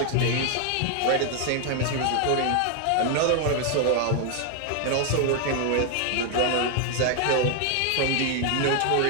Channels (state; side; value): different; both; correlation 0.01